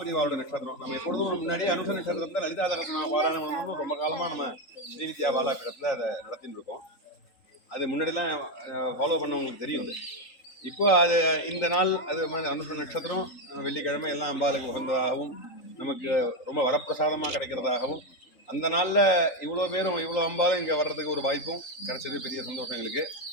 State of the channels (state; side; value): late; right; 3.8 ms